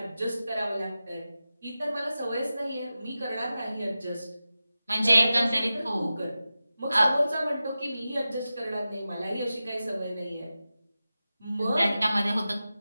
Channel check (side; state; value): both; inverted; correlation -0.93